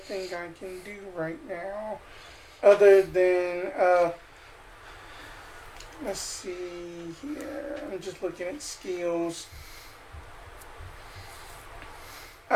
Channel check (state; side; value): identical; both; correlation 1.00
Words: I can do right now, other than let's see here. I'm just looking at skills.